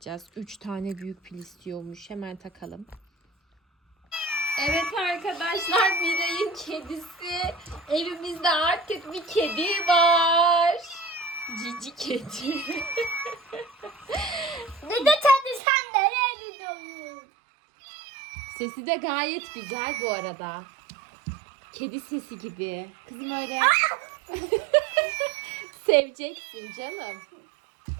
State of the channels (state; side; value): drops out; left; at 15.6 s